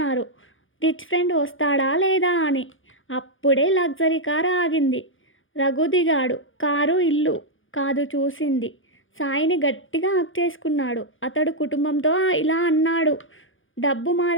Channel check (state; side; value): late; right; 0.58 ms